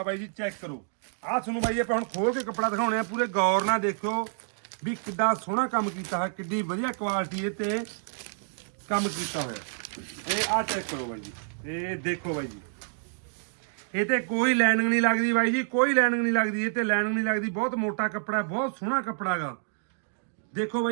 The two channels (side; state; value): left; silent; digital silence